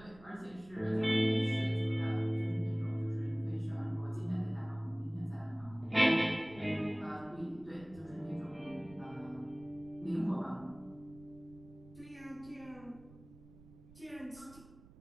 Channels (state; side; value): noise; right; rumble, 21 dB below the sound